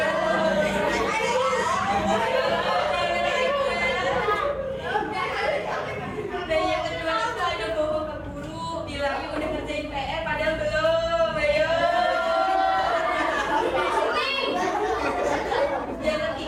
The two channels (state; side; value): identical; both; correlation 1.00